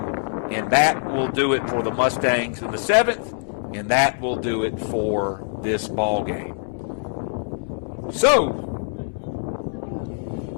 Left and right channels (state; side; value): silent; right; digital silence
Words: and that will do it for the Mustangs in the 7th, and that will do it for this ball game. So,